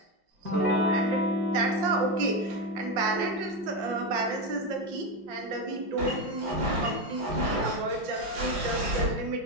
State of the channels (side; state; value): left; late; 5.6 ms